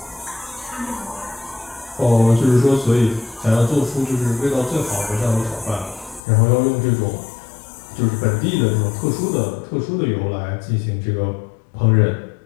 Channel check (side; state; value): right; drops out; at 6.2 s